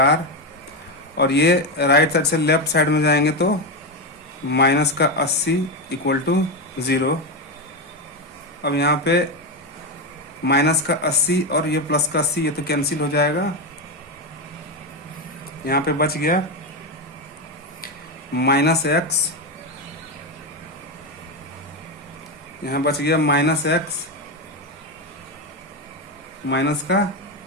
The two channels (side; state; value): both; normal; correlation 0.11